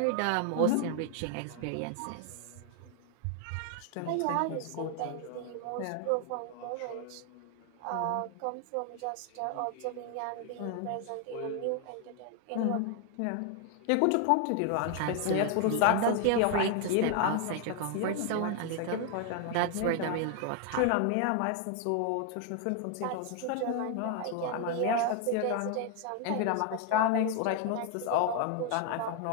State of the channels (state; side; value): different; both; correlation 0.00